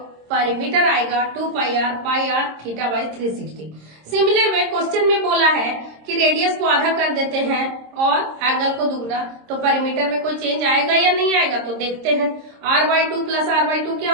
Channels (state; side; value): late; left; 26 ms